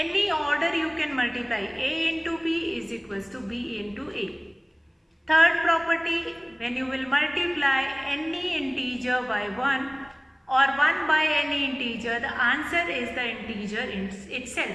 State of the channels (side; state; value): both; identical; correlation 1.00